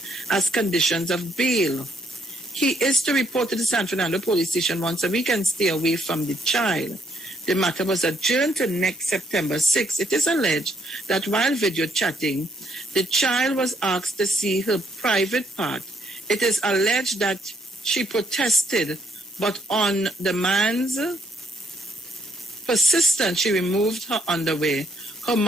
as conditions of bail. He is to report to the San Fernando police station once a week and stay away from the child. The matter was adjourned to next September 6. It is alleged that while video chatting, the child was asked to see her private part. It is alleged that she protested, but on the man's persistence, she removed her underwear. Her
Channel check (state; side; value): normal; both; correlation 0.71